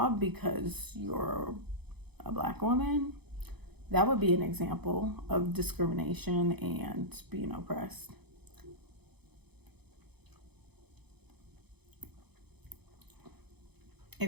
because you're a Black woman? That would be an example of discrimination and being oppressed.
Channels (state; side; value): late; left; 0.98 ms